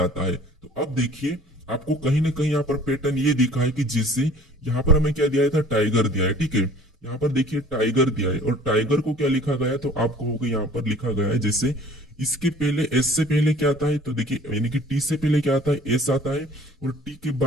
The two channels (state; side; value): normal; both; correlation 0.50